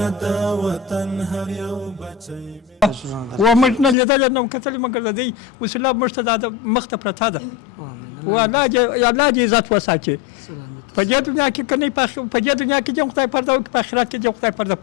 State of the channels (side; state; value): right; drops out; at 4.0 s